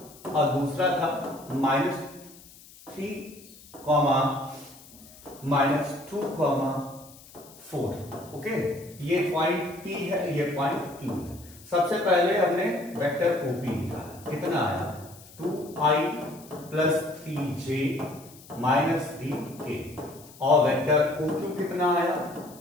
और दूसरा था -3, -2, 4। ओके, ये पॉइंट P है, ये पॉइंट Q है। सबसे पहले हमने वेक्टर OP निकाला, कितना आया 2i plus 3j minus 3k, और वेक्टर OQ कितना आया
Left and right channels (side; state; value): left; noise; hiss, 21 dB below the sound